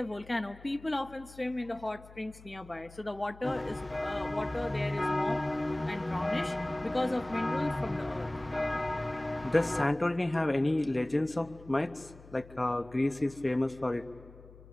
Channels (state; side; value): noise; left; hum, 20 dB below the sound